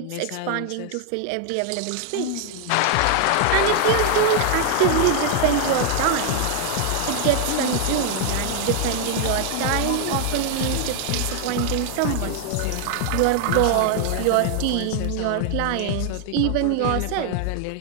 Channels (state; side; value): different; both; correlation 0.00